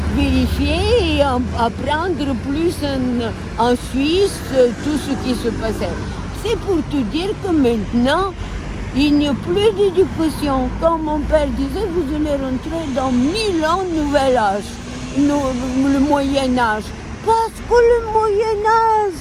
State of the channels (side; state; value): both; identical; correlation 1.00